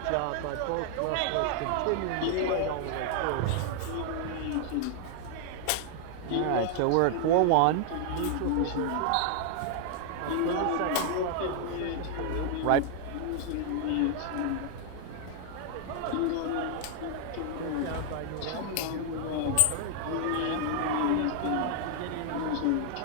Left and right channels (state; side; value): different; both; correlation 0.00